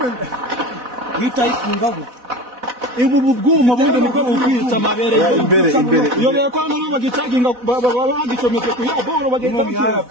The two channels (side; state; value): left; late; 4.1 ms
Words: bita ifungaho ibu bubwuma bundi nibwo bukwica amabere imbere iyo reko hano bagicaginga bagicometse ku ya boro bagenda bakira